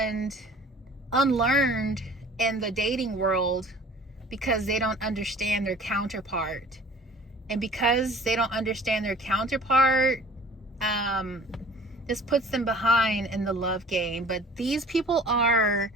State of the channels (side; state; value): both; normal; correlation 0.47